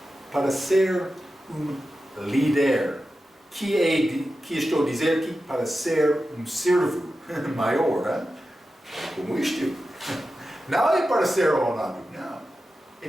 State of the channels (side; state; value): both; normal; correlation 0.92